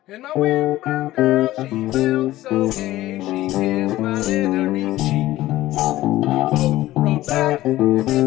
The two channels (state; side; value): quieter; right; 15.9 dB